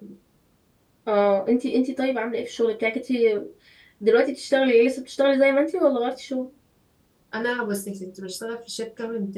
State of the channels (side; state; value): both; identical; correlation 1.00